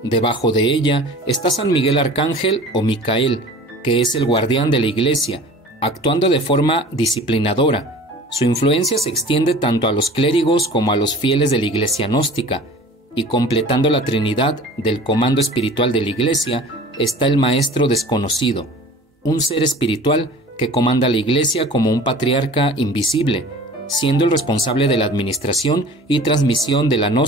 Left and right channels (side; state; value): both; normal; correlation 0.43